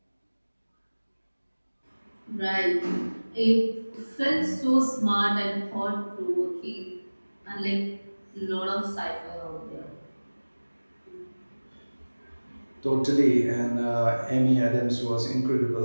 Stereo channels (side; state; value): both; inverted; correlation -1.00